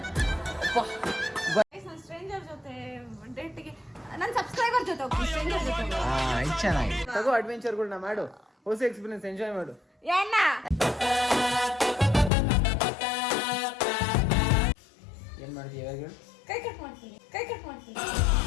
ಸ್ಟ್ರೇಂಜರ್ ಜೊತೆ ಡೇಟ್ಗೆ ನನ್ನ ಸಬ್ಸ್ಕ್ರೈಬರ್ ಜೊತೆ ಸ್ಟ್ರೇಂಜರ್ ಜೊತೆ ಚೆನ್ನಾಗಿ ತಗೋ, ಅಡ್ವೆಂಚರ್ಗಳನ್ನ ಮಾಡು, ಹೊಸ ಎಕ್ಸ್ಪೀರಿಯನ್ಸ್ ಎಂಜಾಯ್ ಮಾಡು. ಏನ ಏನ್ ಮಾಡ್ತೀವಿ ಇವಾಗ? ಕೈ ಕಟ್ ಮಾಡ್ತೀನಿ.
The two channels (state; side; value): drops out; right; at 12.3 s